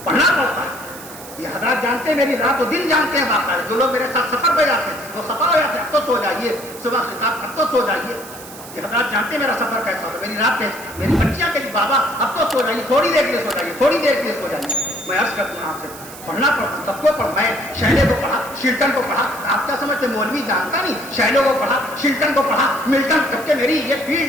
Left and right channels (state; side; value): noise; right; hiss, 16 dB below the sound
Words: پڑھنا پڑتا ہے. یہ حضرات جانتے ہیں, میری رات و دن جانتے ہیں باقاعدہ. جو لوگ میرے ساتھ سفر پہ جاتے ہیں وہ سفر ہو جاتے ہیں, اب تو سو جائیے, صبح خطاب اب تو سو جائیے. یہ حضرات جانتے ہیں میرا سفر کیسا ہوتا ہے. میری رات میری بچیاں کہتی بابا اب تو سو جائیے, تھوڑی دیر کے لیے سو جائیے, تھوڑی دیر کے لیے سو جائیے. میں عرض کرتا ہوں آپ سے پڑھنا پڑتا, سب کو پڑھ. میں شیلے کو پڑھا, شلٹن کو پڑھا. آپ کیا سمجھتے مولوی جانتا نہیں؟ شیلے کو پڑھا, شلٹن کو پڑھا, ملٹن. جب کہ میری یہ